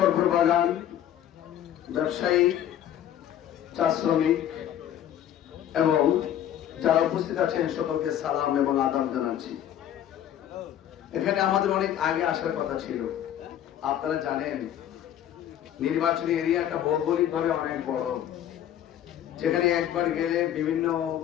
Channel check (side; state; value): right; quieter; 10.9 dB